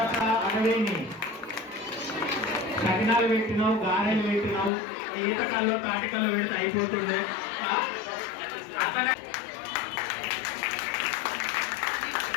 60 సకినాలు పెట్టినావు, గారెలు పెట్టినావు, ఈతకాల్లో తాటికల్లో పెడితే అయిపోతుండే.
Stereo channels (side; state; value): right; drops out; at 4.7 s